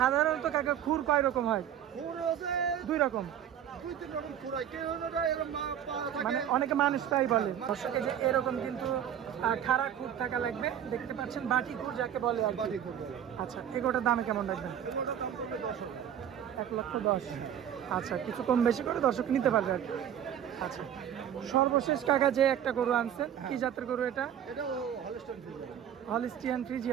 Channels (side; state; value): left; quieter; 9.8 dB